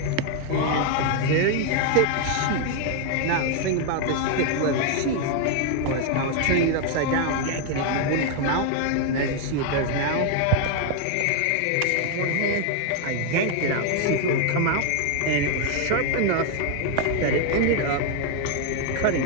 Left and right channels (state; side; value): different; both; correlation 0.00